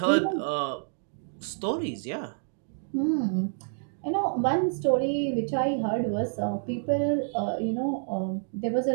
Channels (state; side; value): silent; left; digital silence